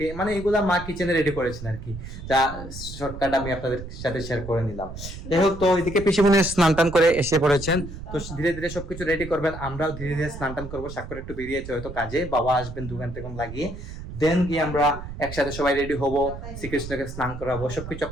মানে এগুলা মা কিচেনে রেডি করেছেন আর কি, যা শর্টকাট আমি আপনাদের সাথে শেয়ার করে নিলাম। যাই হোক, তো এদিকে পিসিমনি স্নান টান করে এসে পড়েছেন। তো ধীরে ধীরে সবকিছু রেডি করবেন, আমরাও ধীরে ধীরে স্নান টান করবো। স্বাক্ষর একটু বেরিয়েছে হয়তো কাজে, বাবা আসবেন 2 ঘন্টা লাগিয়ে। দেন গিয়ে আমরা একসাথে সবাই রেডি হব, শ্রীকৃষ্ণকে স্নান করাবো। সবকিছু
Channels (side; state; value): right; noise; rumble, 10 dB below the sound